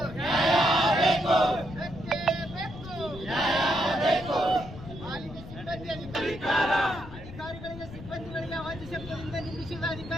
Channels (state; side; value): noise; left; rumble, 13 dB below the sound